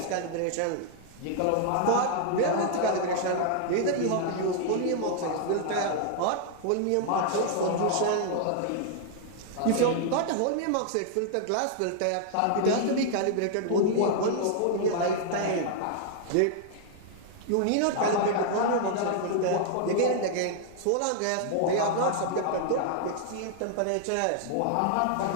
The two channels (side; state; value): both; different; correlation -0.01